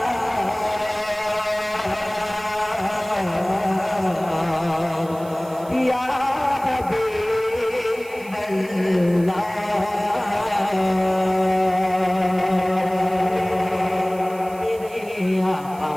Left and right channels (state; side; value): noise; right; hiss, 22 dB below the sound